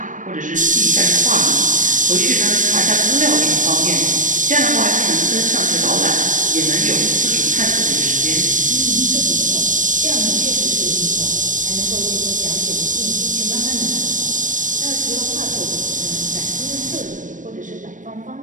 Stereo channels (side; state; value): left; late; 0.37 ms